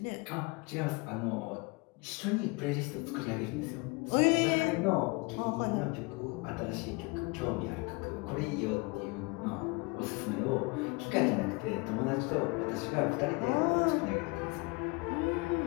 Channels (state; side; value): quieter; right; 27.4 dB